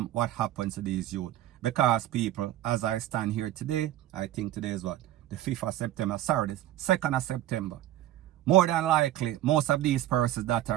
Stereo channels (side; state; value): left; quieter; 13.7 dB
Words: what happens to these youth. Because people, as I stand here today, I think today is what? The 5th of September, sorry, the 2nd of September. More than likely, most of these persons that